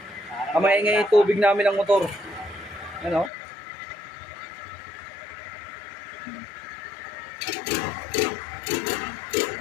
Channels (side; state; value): right; drops out; at 3.3 s